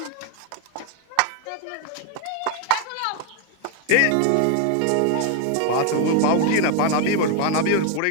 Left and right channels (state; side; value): different; both; correlation 0.00